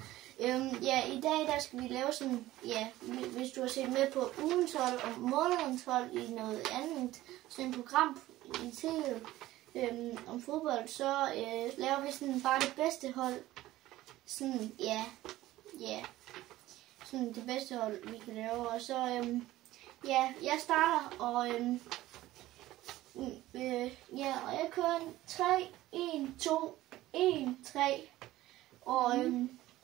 Ja, i dag der skal vi lave sådan, ja, hvis du har set med på ugens hold og månedens hold i noget andet, sådan et program i tv om fodbold, så laver vi sådan bare det bedste hold. Sådan, ja, sådan det bedste hold, vi kan lave. Og så, ja, jeg starter, og og jeg kører en 3, 1, 2, 1, 3, og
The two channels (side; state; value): left; quieter; 16.0 dB